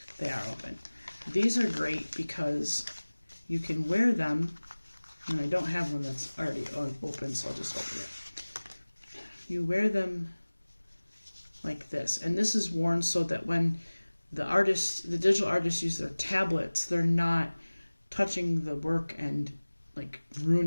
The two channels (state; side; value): inverted; both; correlation -1.00